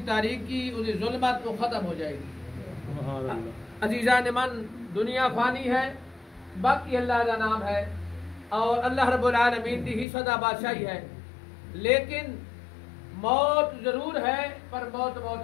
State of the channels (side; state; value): right; drops out; at 10.1 s